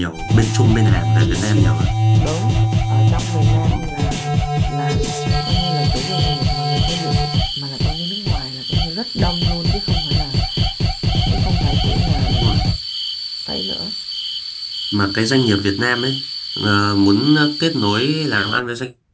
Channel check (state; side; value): identical; both; correlation 1.00